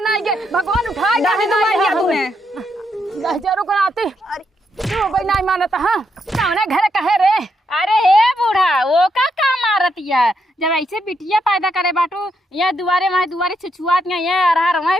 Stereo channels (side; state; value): both; normal; correlation 0.79